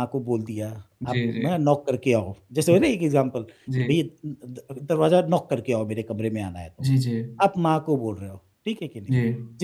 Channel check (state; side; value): identical; both; correlation 1.00